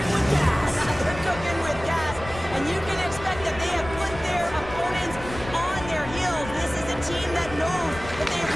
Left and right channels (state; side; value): noise; left; rumble, 13 dB below the sound